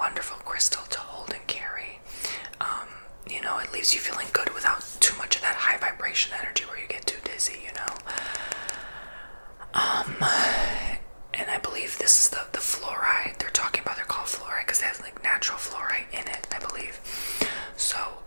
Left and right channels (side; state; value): both; inverted; correlation -1.00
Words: crystal to hold and carry. It leaves you feeling good without too much of that high vibration energy where you get too dizzy, And I believe this is the fluoride they're talking about. They're called fluoride because they have like natural fluoride in it, I believe. So